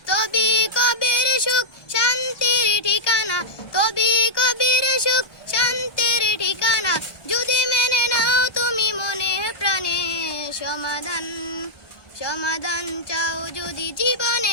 তবে কবির সুখ শান্তির ঠিকানা, তবে কবির সুখ শান্তির ঠিকানা, যদি মেনে নাও তুমি মনে প্রাণে। সমাধান চাও যদি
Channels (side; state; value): right; late; 1.2 ms